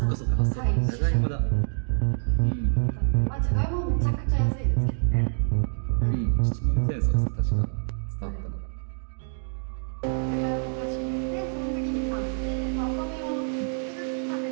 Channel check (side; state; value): left; silent; digital silence